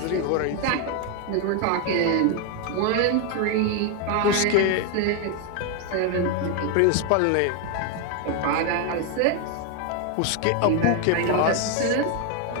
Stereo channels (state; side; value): different; both; correlation 0.01